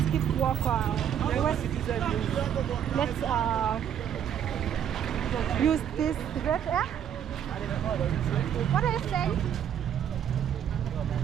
keep walk. Let's use this right here. What are you saying?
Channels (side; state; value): left; quieter; 9.3 dB